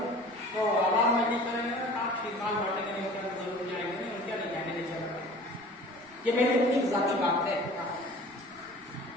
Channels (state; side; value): noise; right; rumble, 29 dB below the sound